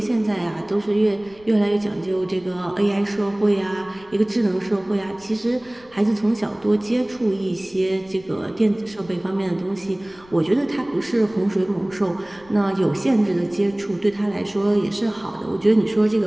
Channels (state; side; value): noise; left; rumble, 26 dB below the sound